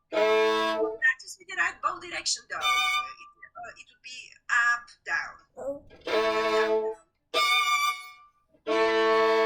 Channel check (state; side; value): identical; both; correlation 1.00